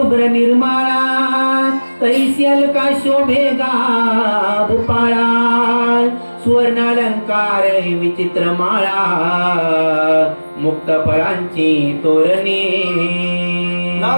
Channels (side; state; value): both; inverted; correlation -1.00